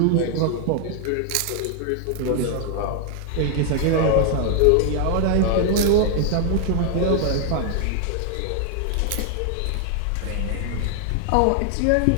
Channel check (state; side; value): different; both; correlation 0.00